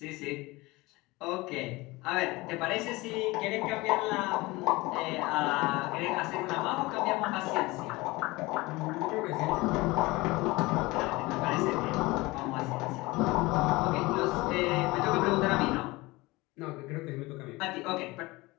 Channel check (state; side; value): quieter; right; 21.8 dB